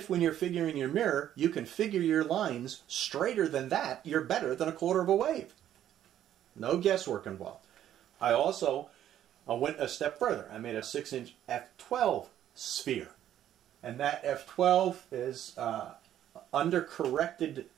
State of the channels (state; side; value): quieter; left; 11.3 dB